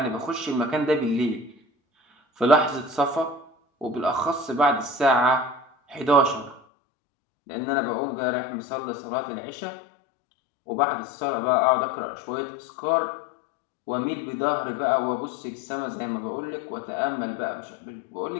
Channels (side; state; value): right; drops out; at 6.6 s